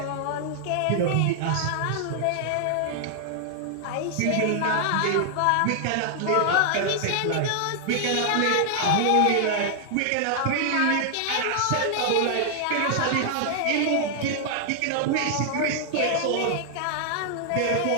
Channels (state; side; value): different; both; correlation 0.00